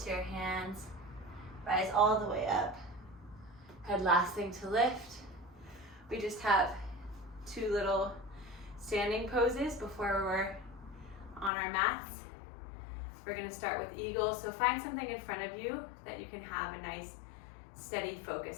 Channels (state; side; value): drops out; right; at 11.5 s